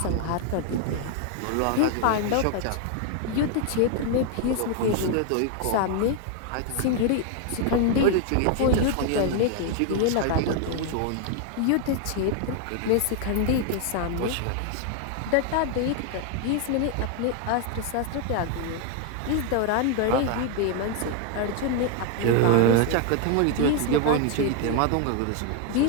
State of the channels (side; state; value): both; different; correlation 0.00